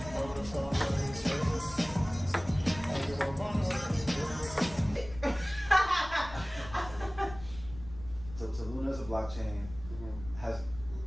So Luna is a blockchain, has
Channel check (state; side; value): noise; left; rumble, 15 dB below the sound